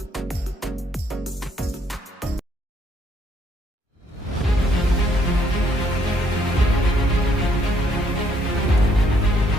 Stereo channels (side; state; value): both; normal; correlation 0.69